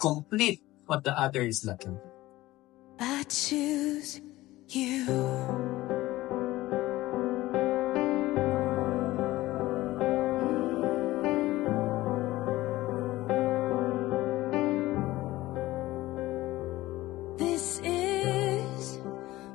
what the other is lacking. I choose you. This is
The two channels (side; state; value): right; quieter; 17.4 dB